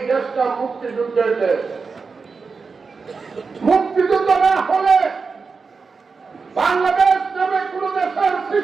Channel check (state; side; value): quieter; left; 4.8 dB